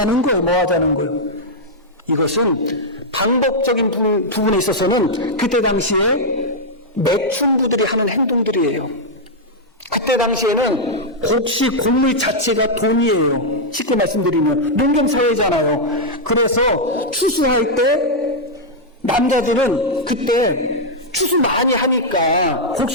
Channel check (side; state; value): both; normal; correlation -0.04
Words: 거예요? 이것은 방법적인 부분에 있어서는 그때 당시에 매춘부들이 하는 행동들이에요. 그때 당시에는 곡식 곡물 자체가 돈이에요. 쉽게 말씀드리면 농경사회잖아요. 그래서 추수할 때 남자들은 그때 추수 많이 하니까